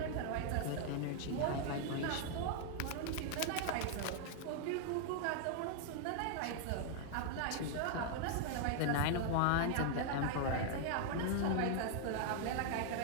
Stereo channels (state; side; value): different; both; correlation 0.00